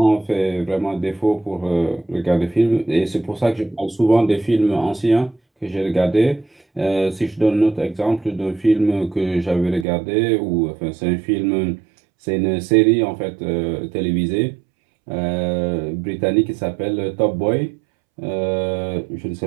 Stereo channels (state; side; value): drops out; left; at 9.9 s